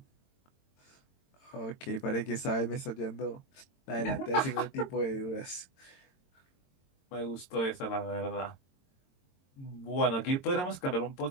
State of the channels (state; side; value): late; right; 22 ms